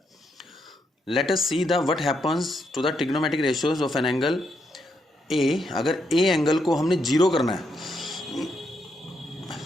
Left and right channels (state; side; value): normal; both; correlation 0.79